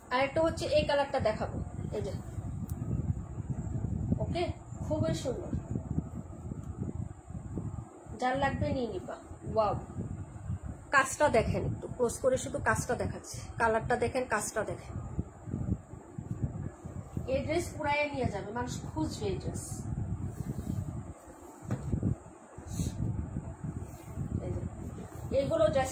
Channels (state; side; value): identical; both; correlation 1.00